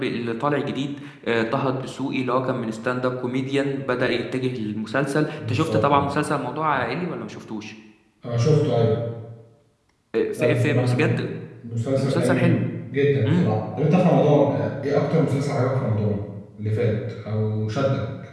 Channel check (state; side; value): identical; both; correlation 1.00